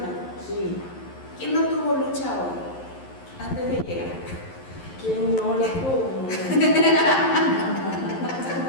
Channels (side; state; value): right; late; 11 ms